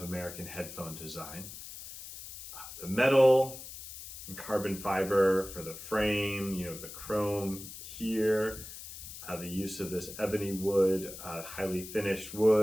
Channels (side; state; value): left; noise; hiss, 12 dB below the sound